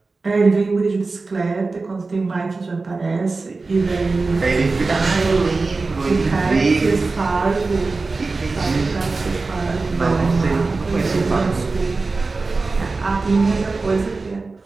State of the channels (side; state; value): left; quieter; 3.8 dB